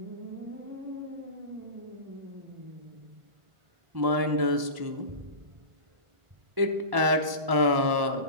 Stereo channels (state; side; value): late; left; 1.1 ms